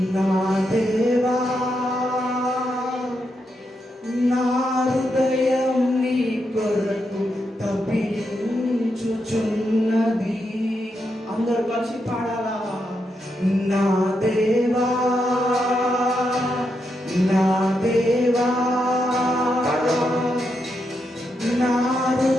నా దేవా నా హృదయం నీ కొరకు తప్పించుచున్నది. అందరూ కలిసి పాడాలా. నా దేవా నా దేవా నా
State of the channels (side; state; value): both; normal; correlation 0.83